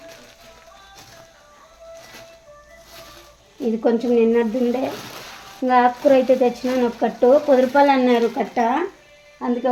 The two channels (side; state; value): both; identical; correlation 1.00